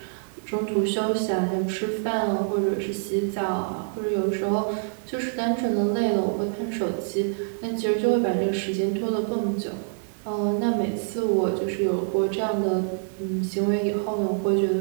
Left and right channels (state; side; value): silent; left; digital silence